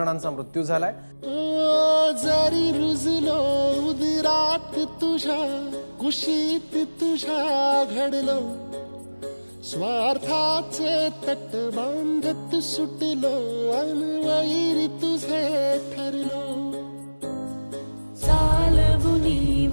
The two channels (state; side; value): inverted; both; correlation -1.00